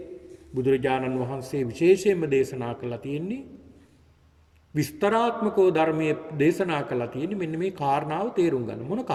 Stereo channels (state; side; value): identical; both; correlation 1.00